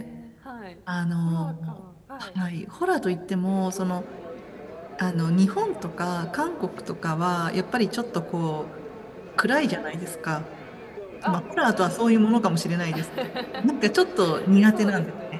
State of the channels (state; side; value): identical; both; correlation 1.00